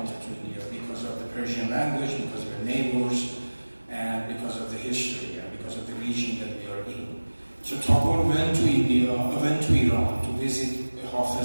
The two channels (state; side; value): inverted; both; correlation -1.00